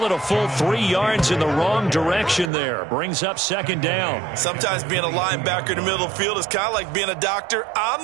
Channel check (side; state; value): left; drops out; at 2.5 s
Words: it a full 3 yards in the wrong direction there. Brings up 2nd down. Sometimes being a linebacker in the middle of the field is kind of like being a doctor